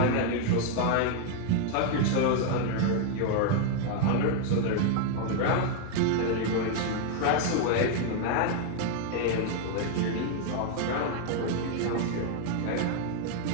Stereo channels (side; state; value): both; different; correlation 0.00